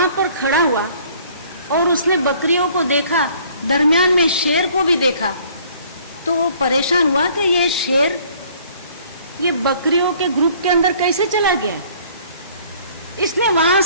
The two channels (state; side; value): inverted; both; correlation -0.56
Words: पर खड़ा हुआ और उसने बकरियों को देखा, दरमियान में शेर को भी देखा, तो वो परेशान हुआ कि ये शेर ये बकरियों के ग्रुप के अंदर कैसे चला गया। इसने वहां